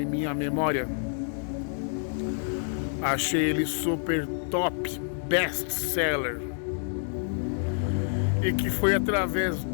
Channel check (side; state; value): right; silent; digital silence